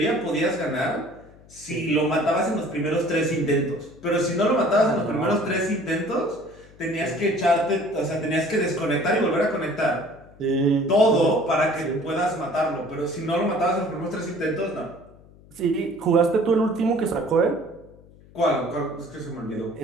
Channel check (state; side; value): noise; left; hum, 24 dB below the sound